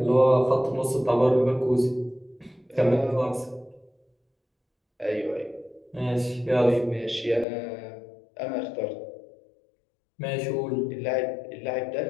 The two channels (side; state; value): right; drops out; at 7.5 s